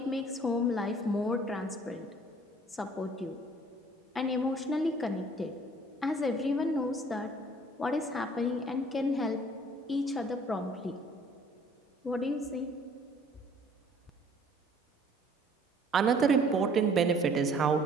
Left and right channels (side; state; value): both; normal; correlation 0.55